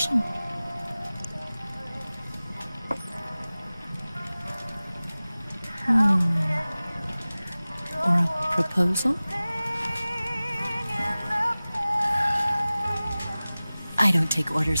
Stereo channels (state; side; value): inverted; both; correlation -0.98